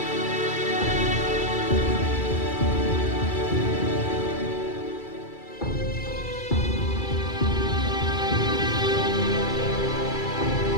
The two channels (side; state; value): right; late; 2.3 ms